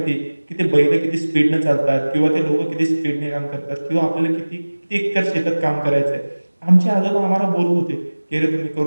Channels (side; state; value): both; inverted; correlation -1.00